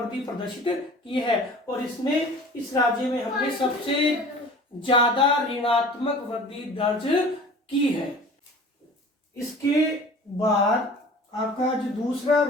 प्रदर्शित की है और इसमें इस राज्य में हमने सबसे ज्यादा ऋणात्मक वृद्धि दर्ज की है। इसके बाद आपका जो दूसरा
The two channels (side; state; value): both; normal; correlation 0.43